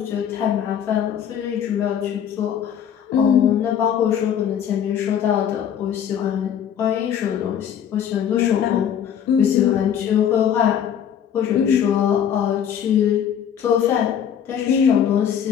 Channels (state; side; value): quieter; right; 8.9 dB